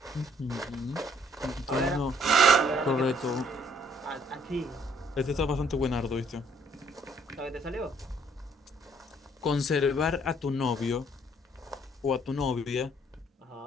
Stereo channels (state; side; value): normal; both; correlation 0.65